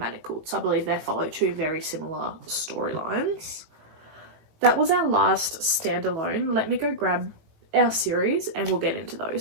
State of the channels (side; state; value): left; late; 19 ms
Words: So I believe they follow 2 very similar storylines. That was our last standalone. Let me go grab our series and we'll get into